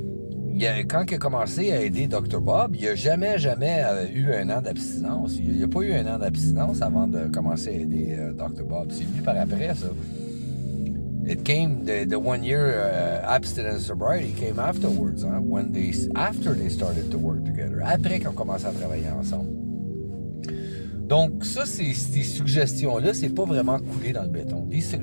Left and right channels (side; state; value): both; inverted; correlation -1.00